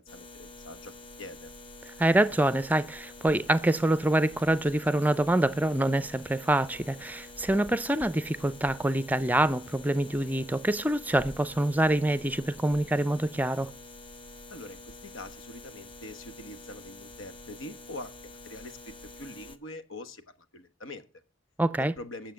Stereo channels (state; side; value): normal; both; correlation 0.84